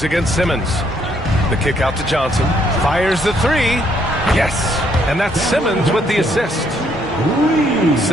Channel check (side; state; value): right; noise; hum, 20 dB below the sound